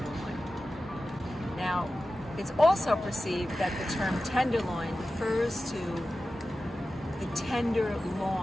Now, it's also perceived that the term tenderloin refers to the tender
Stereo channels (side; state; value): both; normal; correlation 0.94